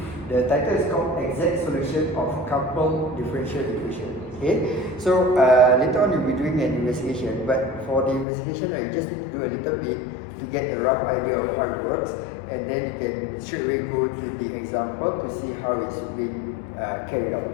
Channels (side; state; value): right; drops out; at 8.2 s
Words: The title is called Exact Solution of Coupled Differential Equation. Okay, so later on you'll be doing an investigation, but for the investigation, you just need to do a little bit to get a rough idea of how it works, and then you can straight away go to the example to see how it's being carried